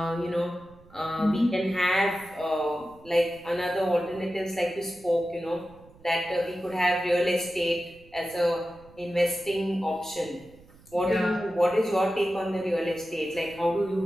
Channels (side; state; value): right; noise; rumble, 25 dB below the sound